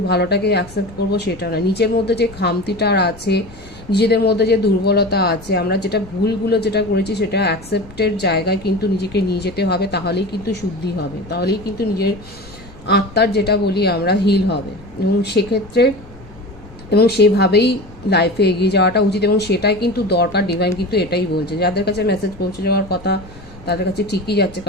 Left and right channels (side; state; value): left; noise; rumble, 20 dB below the sound